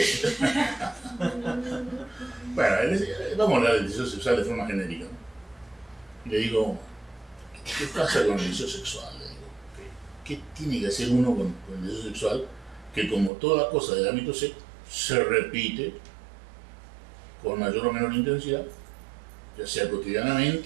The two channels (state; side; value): drops out; left; at 13.3 s